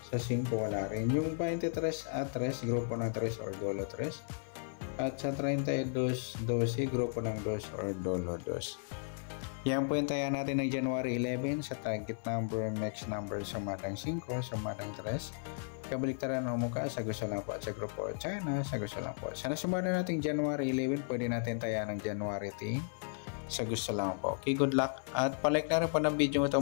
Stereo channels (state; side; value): silent; right; 55 dB below the other